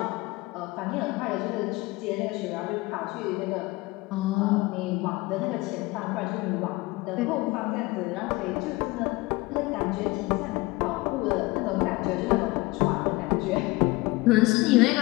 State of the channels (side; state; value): right; quieter; 22.1 dB